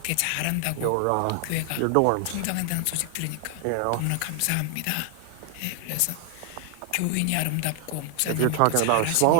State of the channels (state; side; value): different; both; correlation 0.00